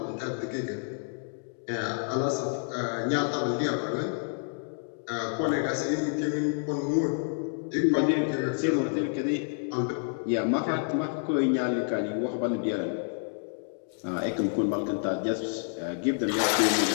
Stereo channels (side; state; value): right; silent; 59 dB below the other